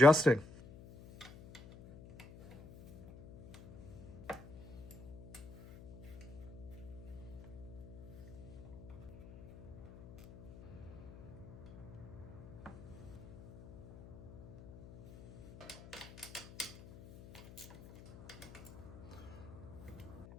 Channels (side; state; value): left; noise; hum, 16 dB below the sound